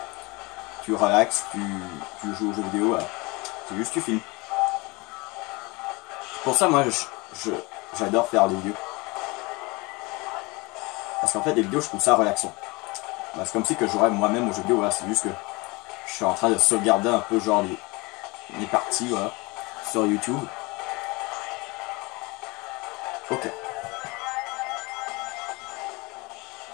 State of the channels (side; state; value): right; quieter; 25.2 dB